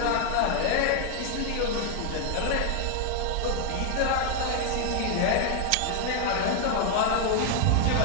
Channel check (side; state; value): both; different; correlation 0.00